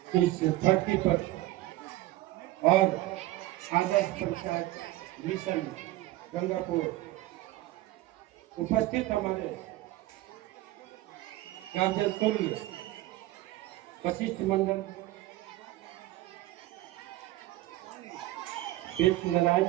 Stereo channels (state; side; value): quieter; left; 16.7 dB